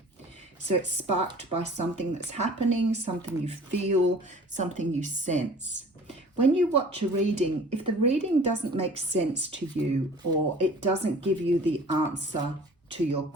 So it's sparked by something that's happening, something you feel, something you sense. When you watch a reading, if the reading doesn't make sense to you or it doesn't give you the answer to your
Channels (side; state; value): both; normal; correlation 0.46